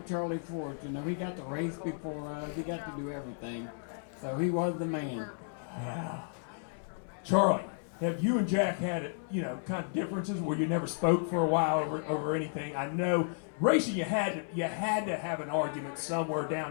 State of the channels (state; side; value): silent; right; 56 dB below the other